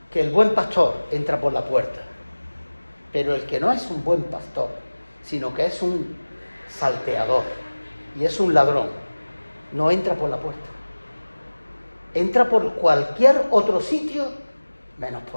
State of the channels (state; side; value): inverted; both; correlation -1.00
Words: que el buen pastor entra por la puerta, pero el que no es un buen pastor, sino que es un salteador y es un ladrón, no entra por la puerta. Entra por cualquier otro sitio menos